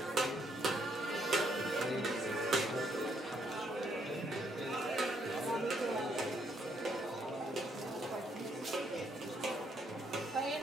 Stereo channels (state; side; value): normal; both; correlation 0.72